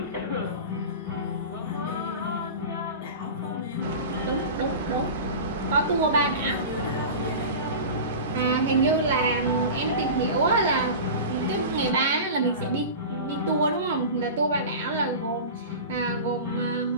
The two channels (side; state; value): both; inverted; correlation -0.31